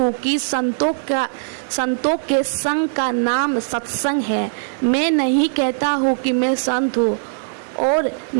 कि संतों के संग का नाम सत्संग है। मैं नहीं कहता हूँ कि मैं संत हूँ और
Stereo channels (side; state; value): left; silent; digital silence